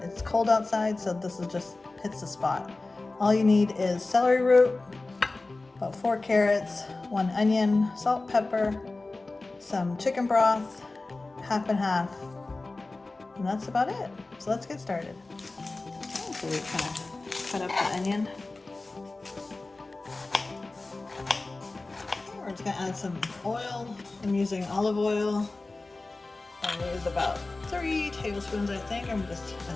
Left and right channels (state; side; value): quieter; right; 3.3 dB